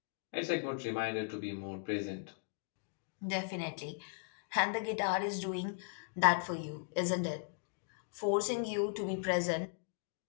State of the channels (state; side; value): silent; right; digital silence